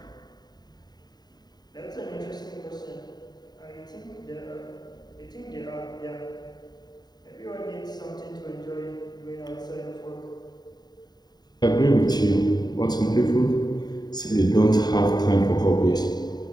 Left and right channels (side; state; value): right; late; 0.20 ms